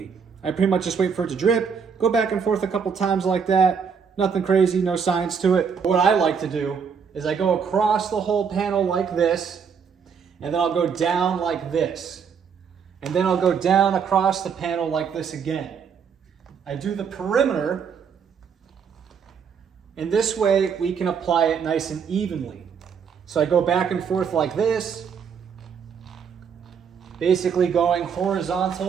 I pretty much just wait for it to drip, go back and forth a couple times like that. Nothing crazy, no science to it. What I like to do is I go across the whole panel like this, and then I'll go down like this. And then I'll go down across the panel like this again. I do the perimeter, and this way we can apply it nice and evenly. So I go back and forth like this, basically going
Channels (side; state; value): left; quieter; 6.6 dB